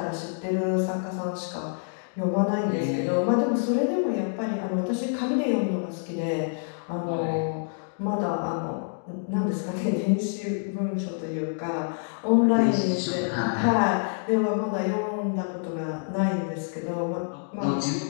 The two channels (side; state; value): right; silent; digital silence